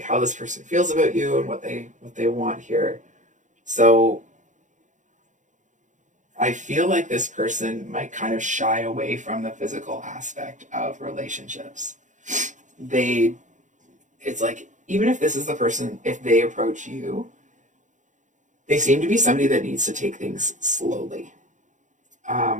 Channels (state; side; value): late; left; 0.36 ms